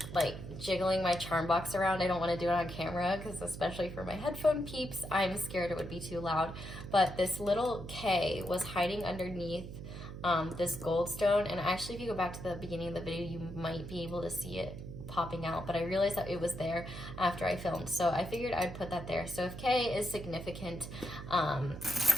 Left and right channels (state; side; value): noise; right; hum, 10 dB below the sound